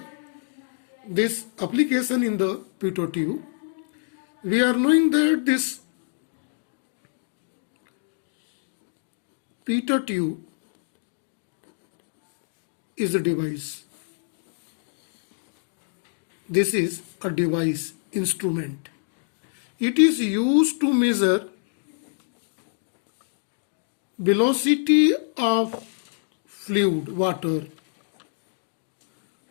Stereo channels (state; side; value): silent; right; digital silence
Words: This application in the pitot tube. We are knowing that this pitot tube is a device. This is a device, instrument. It is used to measure velocity of fluid, water,